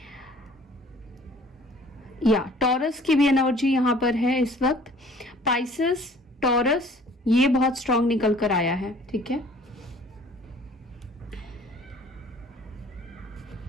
या टॉरस की भी एनर्जी यहाँ पर है इस वक्त। पाइसेस, टॉरस, ये बहुत स्ट्रांग निकल कर आया है, ठीक है।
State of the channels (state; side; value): normal; both; correlation 0.53